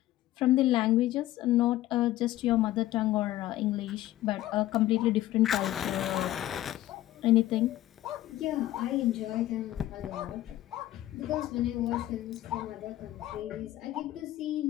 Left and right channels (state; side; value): quieter; right; 14.8 dB